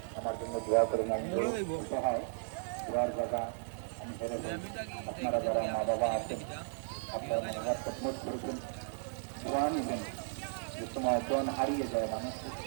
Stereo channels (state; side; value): silent; left; digital silence